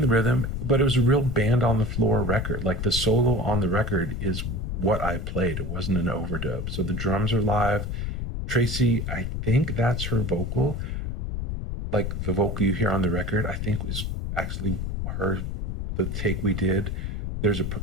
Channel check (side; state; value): left; noise; rumble, 3 dB below the sound